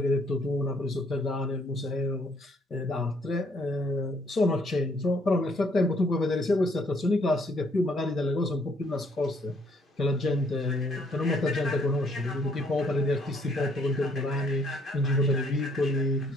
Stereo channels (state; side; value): normal; both; correlation 0.66